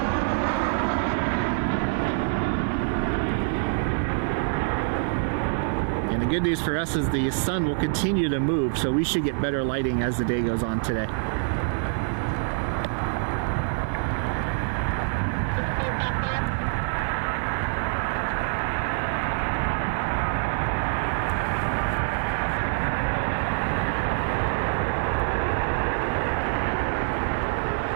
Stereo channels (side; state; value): left; silent; 61 dB below the other